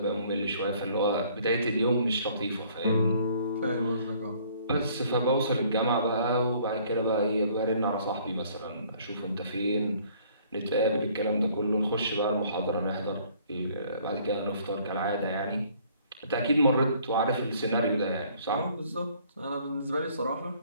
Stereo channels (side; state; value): both; inverted; correlation -0.59